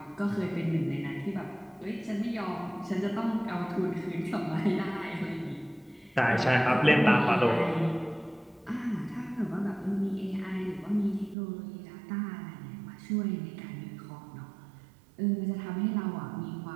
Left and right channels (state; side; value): drops out; left; at 11.4 s